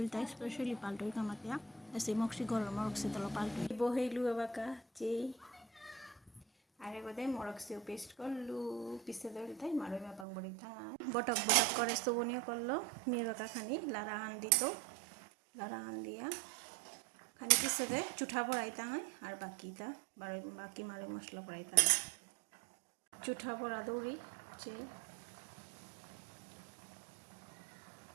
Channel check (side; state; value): left; drops out; at 10.2 s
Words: তাই স্পেশালি পাল্টোই কামাতিয়া এসে মক্সি গরম মরক্সি তলো পাল্টোই বহেইলু এবাকা যেই আরে গোদে মরক্সিও পেস্ট করলু পিসে দইল তাই মারই মা পাং বড়ি থাঙা বটক বটক করে সুবনিও করলো মেয়ে বাকা খানি লারা আন দিত লারা আন দিয়া খানি পিসে দে চুঠা পড়াইতা হয় আর বাকিটা বাকি মারে মশলা পড়াইতা হয় চুঠা পড়া দৌড়ি যে